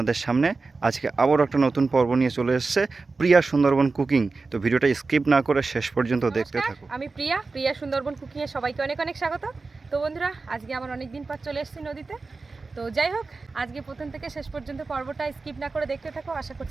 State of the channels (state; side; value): quieter; left; 3.9 dB